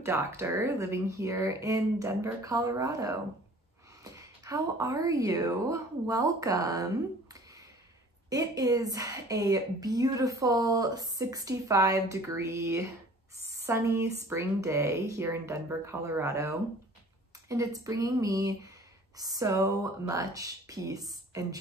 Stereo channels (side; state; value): both; normal; correlation 0.49